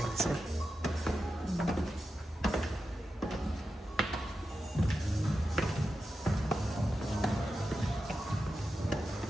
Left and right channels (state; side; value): normal; both; correlation 0.90